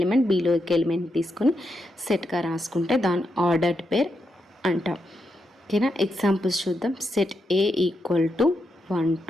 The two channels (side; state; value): both; normal; correlation 0.83